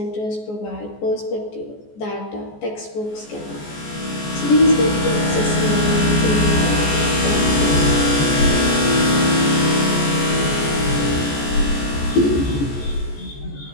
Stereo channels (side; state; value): right; late; 14 ms